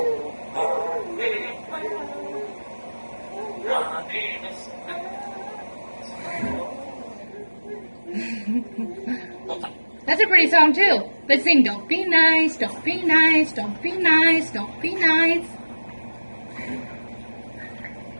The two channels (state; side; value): inverted; both; correlation -1.00